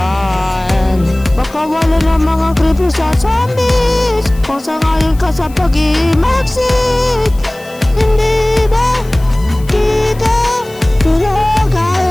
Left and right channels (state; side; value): noise; left; hiss, 23 dB below the sound